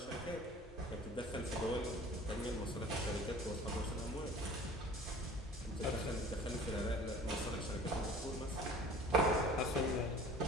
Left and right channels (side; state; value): both; normal; correlation 0.46